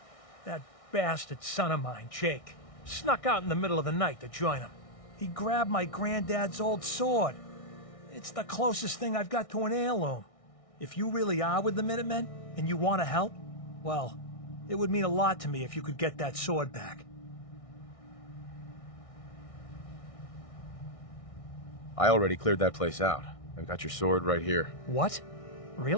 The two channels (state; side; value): late; right; 1.6 ms